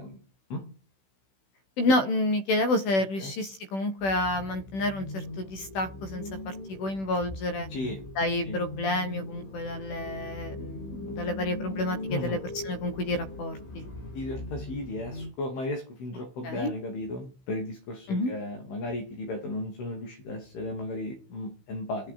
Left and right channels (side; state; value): right; late; 16 ms